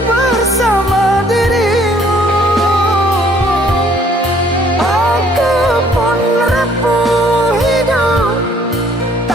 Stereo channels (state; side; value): normal; both; correlation 0.61